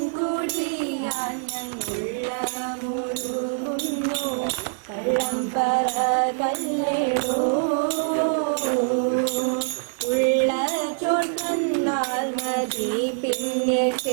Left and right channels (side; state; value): left; silent; digital silence